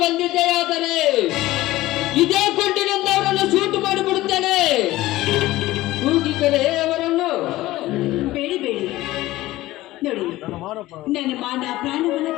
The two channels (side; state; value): right; quieter; 17.1 dB